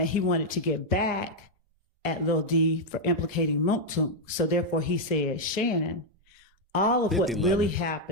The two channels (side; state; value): both; normal; correlation -0.01